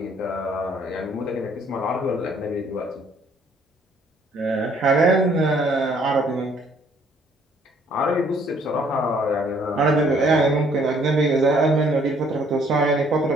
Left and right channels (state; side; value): normal; both; correlation 0.62